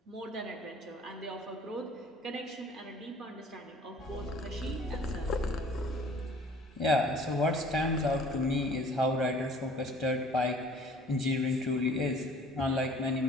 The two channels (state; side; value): normal; both; correlation 0.52